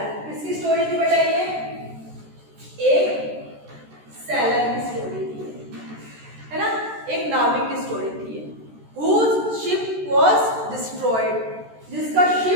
किसकी स्टोरी थी बेटा? ये एक सेलर की स्टोरी थी, है ना? एक नाविक की स्टोरी थी, whose ship was destroyed, जिसका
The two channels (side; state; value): left; late; 14 ms